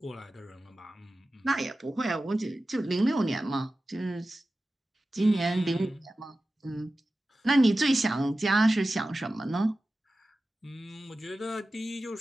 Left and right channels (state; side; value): normal; both; correlation 0.95